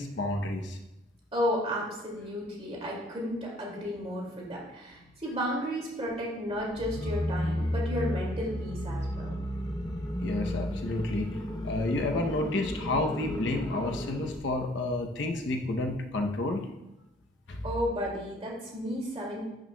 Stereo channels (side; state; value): both; normal; correlation 0.60